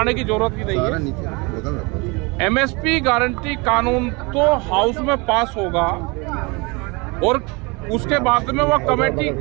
की जरूरत ही नहीं है। MSP गारंटी कानून तो हाउस में पास होगा और उसके बाद में वो कमेटी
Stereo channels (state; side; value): quieter; left; 27.7 dB